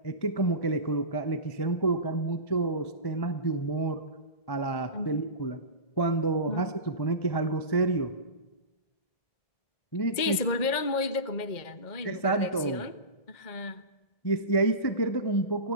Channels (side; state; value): right; late; 2.1 ms